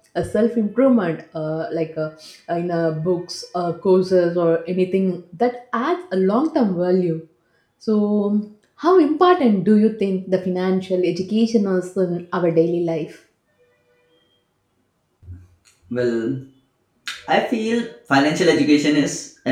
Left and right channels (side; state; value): both; identical; correlation 1.00